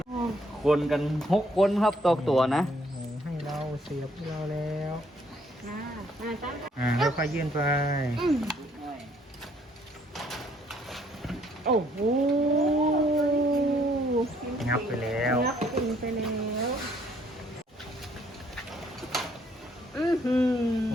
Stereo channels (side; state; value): both; normal; correlation 0.66